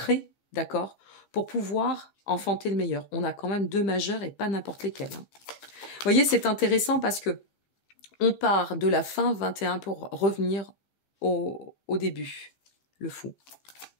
d'accord, pour pouvoir enfanter le meilleur. On a quand même 2 majeurs et pas n'importe lesquels. Hein. Vous voyez, c'est intéressant parce que on part de la fin 21 pour revenir au début. Le fou.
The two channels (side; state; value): right; late; 15 ms